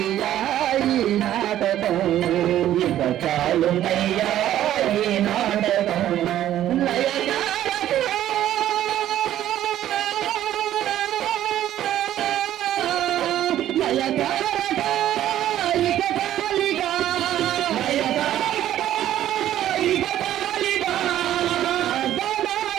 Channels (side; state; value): left; quieter; 12.3 dB